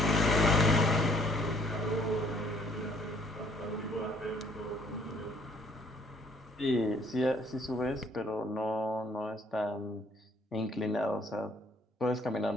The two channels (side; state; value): both; normal; correlation 0.61